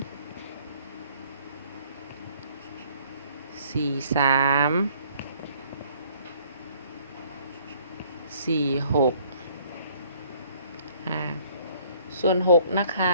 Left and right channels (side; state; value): both; inverted; correlation -0.59